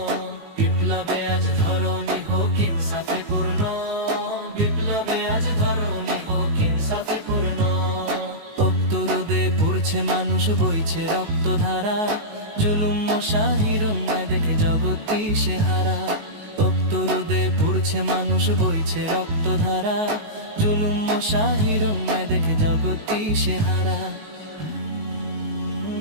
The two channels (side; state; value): left; late; 19 ms